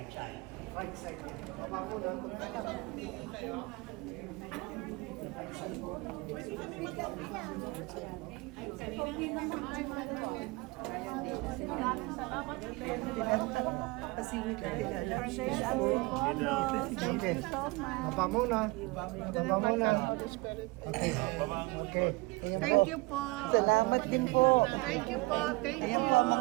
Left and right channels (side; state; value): left; quieter; 24.8 dB